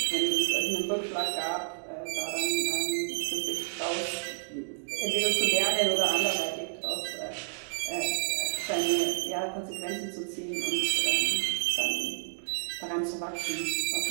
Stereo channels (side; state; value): left; silent; digital silence